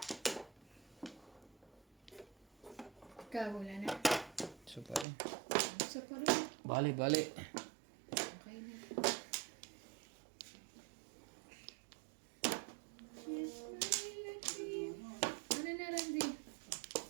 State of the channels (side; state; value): left; drops out; at 5.1 s